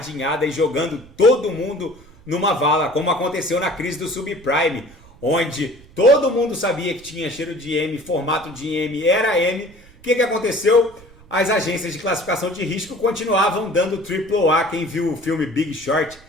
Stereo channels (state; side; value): noise; right; rumble, 24 dB below the sound